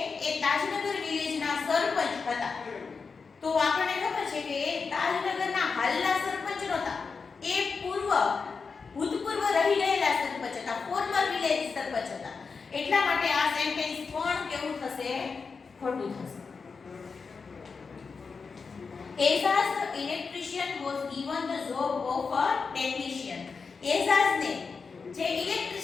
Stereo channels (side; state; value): right; quieter; 5.0 dB